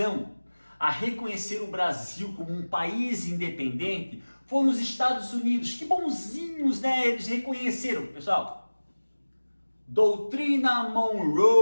a reconhecer o Brasil como um país independente foram os Estados Unidos. Que bonzinhos, né? Eles reconheceram, pessoal. Doutrina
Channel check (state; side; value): inverted; both; correlation -1.00